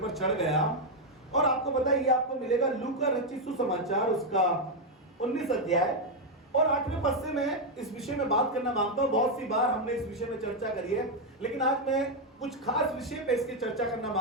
चढ़ गया। और आपको पता है ये आपको मिलेगा लूका रचित सुसमाचार उसका 19 अध्याय और 8वें पद से मैं इस विषय में बात करना मांगता हूं। बहुत सी बार हमने इस विषय में चर्चा करी है, लेकिन आज मैं कुछ खास विषय पे इसकी चर्चा करना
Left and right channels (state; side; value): normal; both; correlation 0.02